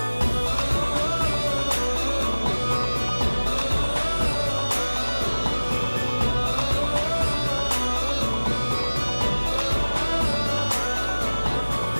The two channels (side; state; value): both; inverted; correlation -1.00